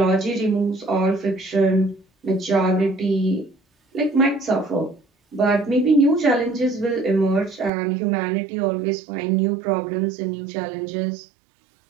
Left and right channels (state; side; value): drops out; left; at 7.7 s